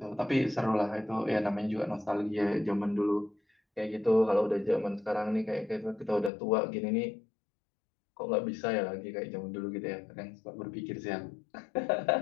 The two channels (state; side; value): drops out; right; at 6.3 s